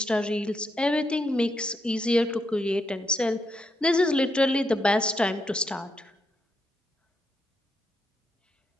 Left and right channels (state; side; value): normal; both; correlation 0.80